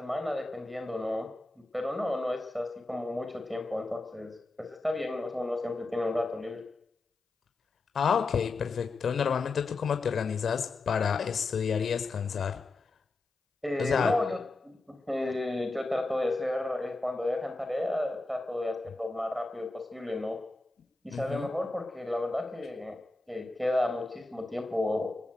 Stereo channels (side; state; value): right; quieter; 3.3 dB